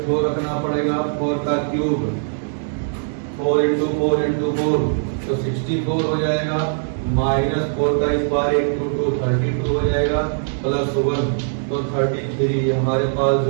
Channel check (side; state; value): left; silent; digital silence